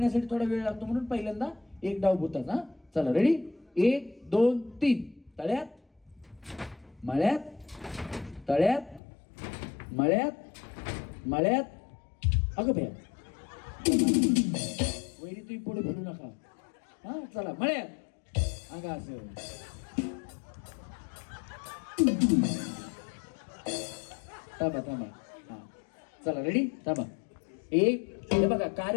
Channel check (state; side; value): drops out; right; at 9.0 s